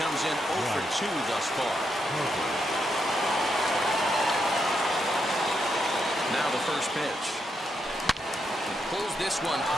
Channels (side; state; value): both; normal; correlation 0.81